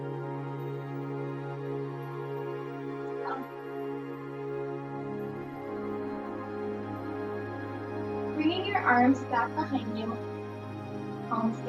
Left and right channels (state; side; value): identical; both; correlation 1.00